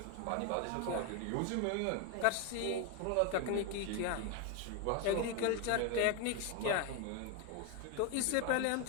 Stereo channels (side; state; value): both; different; correlation 0.01